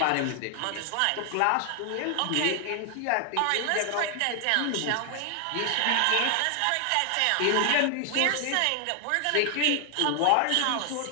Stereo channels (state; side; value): different; both; correlation 0.00